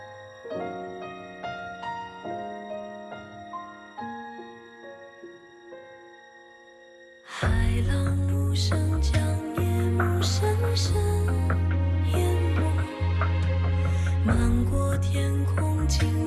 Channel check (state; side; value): identical; both; correlation 1.00